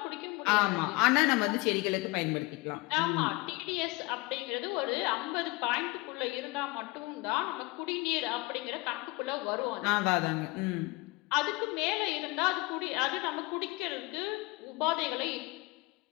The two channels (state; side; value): quieter; right; 23.8 dB